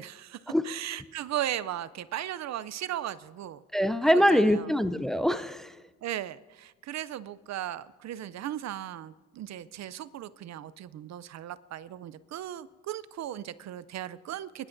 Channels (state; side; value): normal; both; correlation 0.72